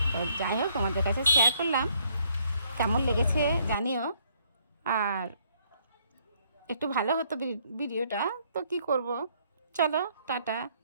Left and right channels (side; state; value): both; inverted; correlation -0.67